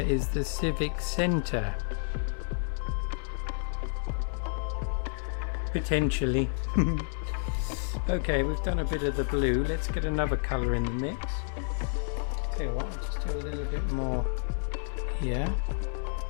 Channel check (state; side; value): silent; right; 58 dB below the other